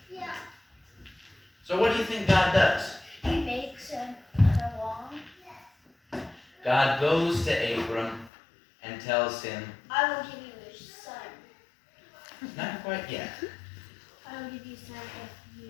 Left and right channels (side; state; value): right; drops out; at 8.3 s